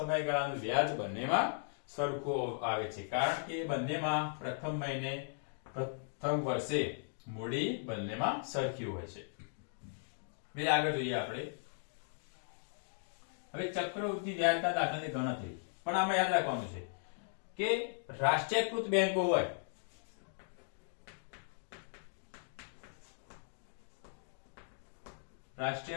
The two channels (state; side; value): silent; right; digital silence